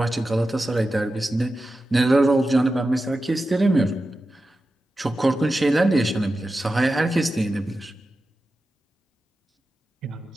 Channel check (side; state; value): both; normal; correlation 0.92